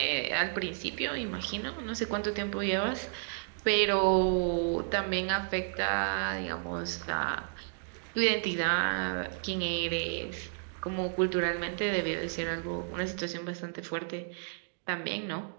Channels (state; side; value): silent; left; digital silence